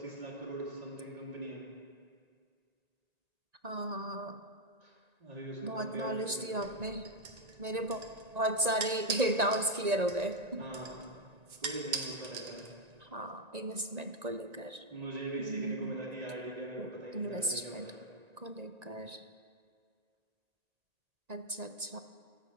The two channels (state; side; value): late; left; 1.9 ms